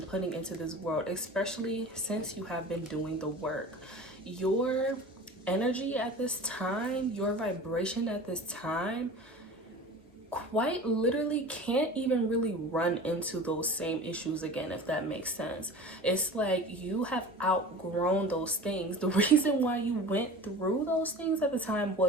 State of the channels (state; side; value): normal; both; correlation 0.37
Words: putting into this world, especially since you have been doing the work. Your energy at this time, your vibration at this time, quite literally can't even really run into those same issues again, if that makes sense. It's like you have outgrown those things. The reason why you went through those things at the time